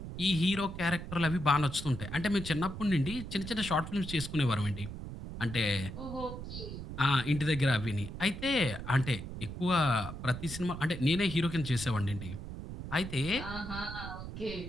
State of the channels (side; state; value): right; noise; rumble, 9 dB below the sound